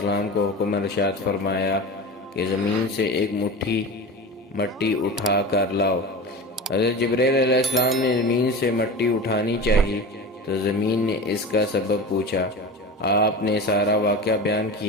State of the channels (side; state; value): both; normal; correlation 0.30